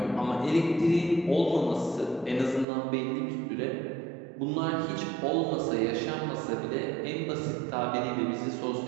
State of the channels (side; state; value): left; drops out; at 2.7 s